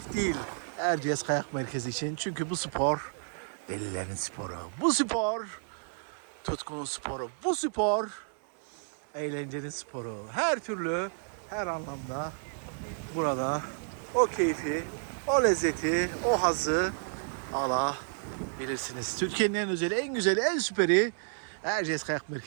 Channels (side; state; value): left; silent; digital silence